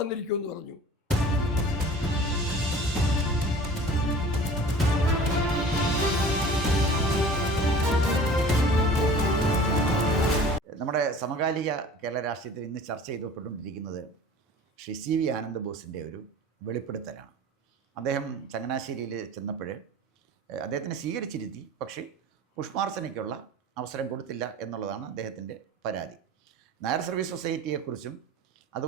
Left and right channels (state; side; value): normal; both; correlation 0.43